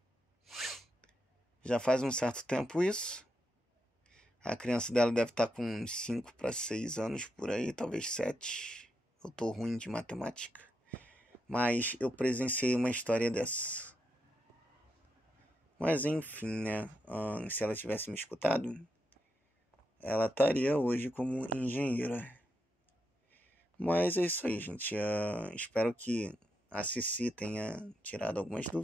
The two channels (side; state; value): both; normal; correlation 0.83